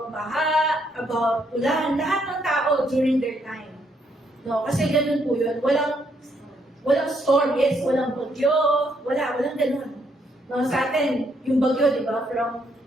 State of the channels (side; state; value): both; normal; correlation 0.73